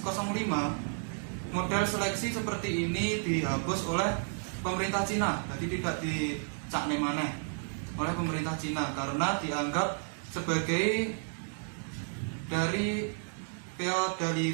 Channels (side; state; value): left; silent; 56 dB below the other